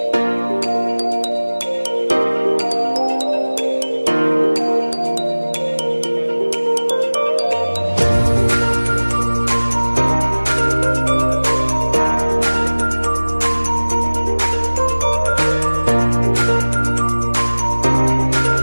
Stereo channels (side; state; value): both; inverted; correlation -1.00